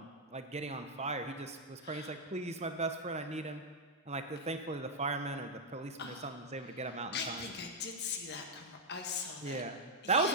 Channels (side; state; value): both; normal; correlation -0.02